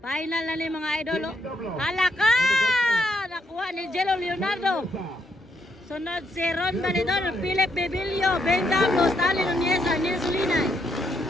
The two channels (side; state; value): both; normal; correlation 0.76